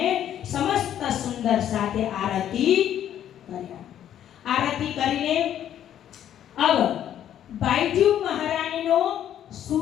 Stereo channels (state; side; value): quieter; right; 10.6 dB